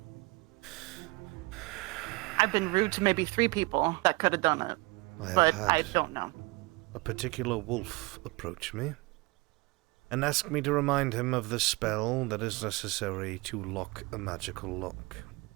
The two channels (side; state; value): left; quieter; 24.2 dB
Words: been rude to maybe 3 people that could have done it, but I don't know. A particular wolf approached me and asked me to remind him of the spell that is necessary to lock a magical lock.